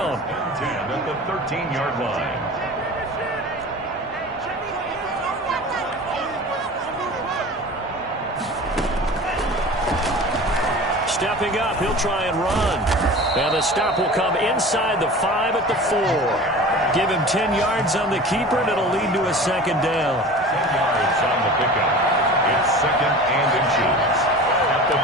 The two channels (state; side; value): normal; both; correlation 0.37